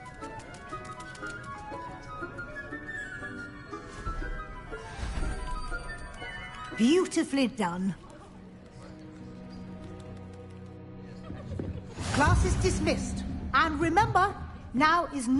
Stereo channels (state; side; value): identical; both; correlation 1.00